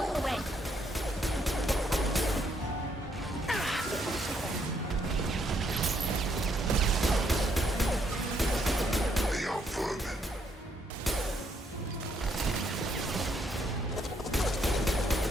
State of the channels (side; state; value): both; normal; correlation 0.73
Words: goes away. They are vermin.